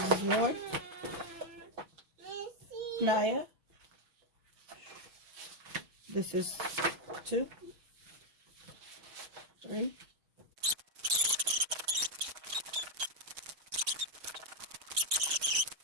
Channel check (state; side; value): late; left; 6.3 ms